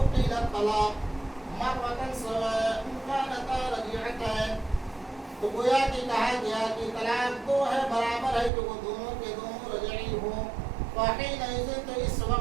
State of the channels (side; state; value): left; drops out; at 8.5 s